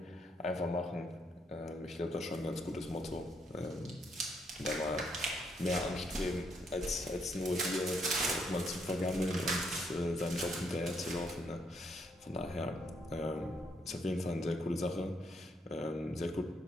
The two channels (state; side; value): normal; both; correlation 0.74